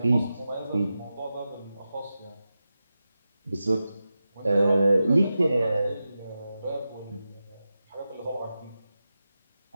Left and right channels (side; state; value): both; inverted; correlation -0.92